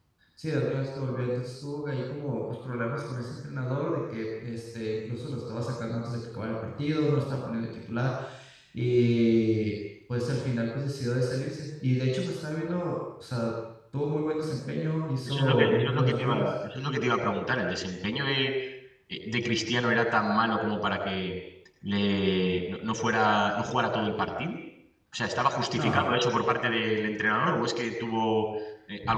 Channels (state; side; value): identical; both; correlation 1.00